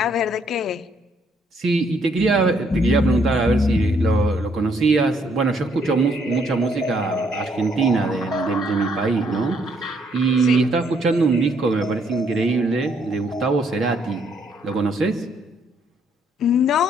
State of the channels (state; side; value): normal; both; correlation 0.69